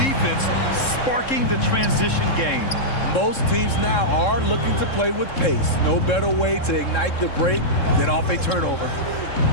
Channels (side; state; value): right; late; 3.7 ms